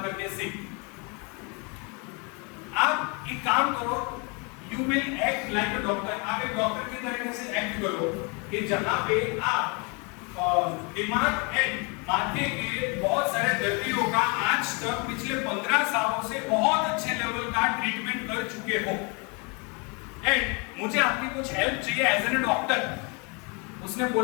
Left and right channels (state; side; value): quieter; right; 32.3 dB